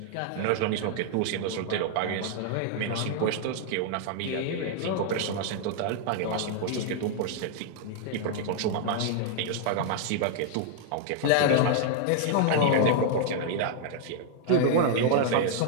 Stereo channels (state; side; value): different; both; correlation 0.00